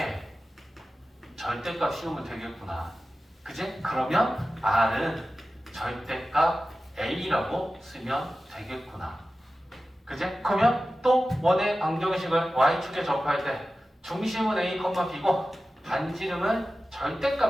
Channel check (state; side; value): normal; both; correlation 0.94